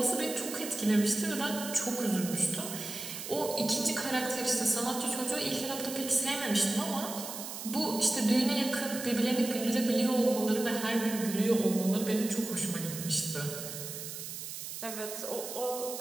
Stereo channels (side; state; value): right; noise; hiss, 8 dB below the sound